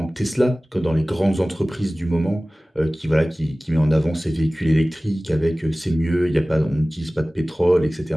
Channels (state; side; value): normal; both; correlation 0.98